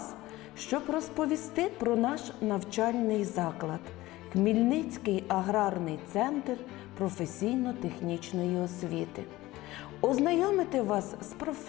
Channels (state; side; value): quieter; right; 17.9 dB